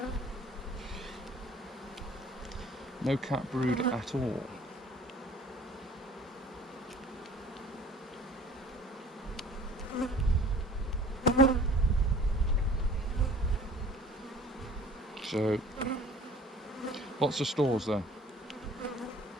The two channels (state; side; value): normal; both; correlation 0.49